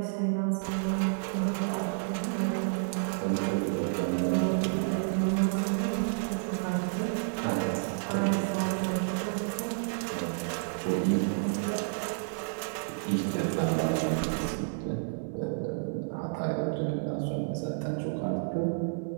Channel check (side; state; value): left; silent; 58 dB below the other